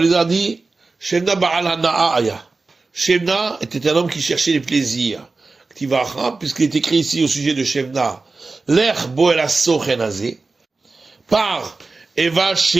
Elazar dit, Shemna Ba'al Hana'aya. Shemna était un homme qui cherchait les plaisirs. Puisqu'il est écrit ici au sujet de Shemna, L'er bo el asochenazé, par et va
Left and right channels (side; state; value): left; quieter; 3.8 dB